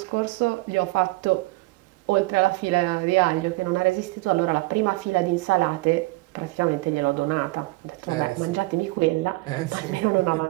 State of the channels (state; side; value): quieter; left; 22.1 dB